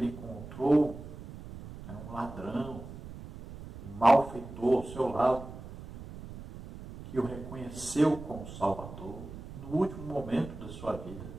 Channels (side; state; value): right; noise; rumble, 13 dB below the sound